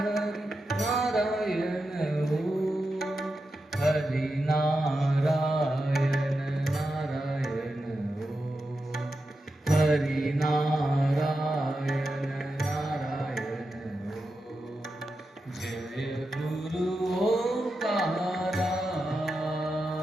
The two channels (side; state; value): both; normal; correlation 0.89